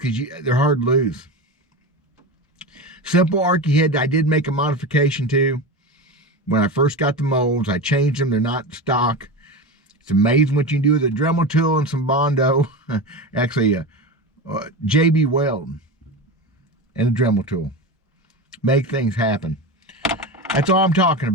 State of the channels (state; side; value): normal; both; correlation 0.24